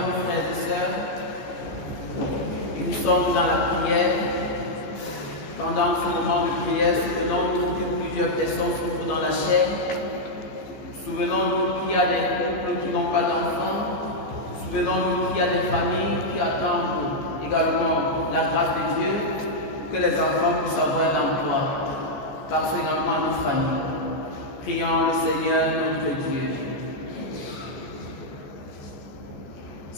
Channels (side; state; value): right; late; 14 ms